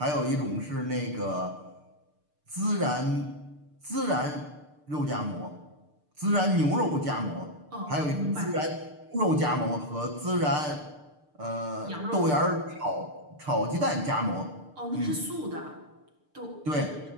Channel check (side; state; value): left; late; 6.7 ms